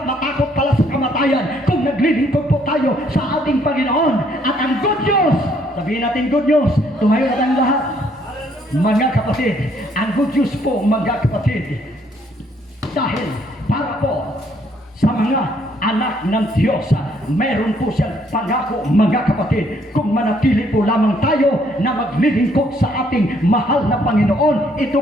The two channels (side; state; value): both; normal; correlation 0.67